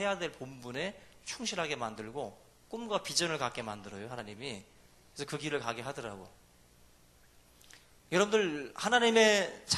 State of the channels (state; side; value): identical; both; correlation 1.00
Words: 될 본분에 충실하게 만들고 꿈과 비전을 갖게 만들어요. 하나님이. 그래서 그 길을 가게 하더라고. 여러분들 하나님의